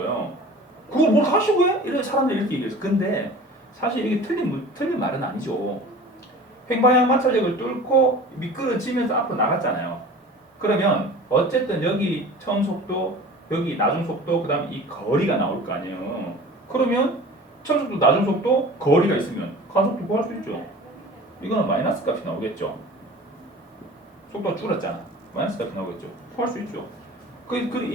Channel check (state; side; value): normal; both; correlation 0.41